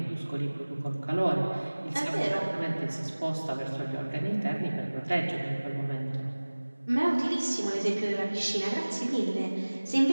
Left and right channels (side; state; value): both; inverted; correlation -1.00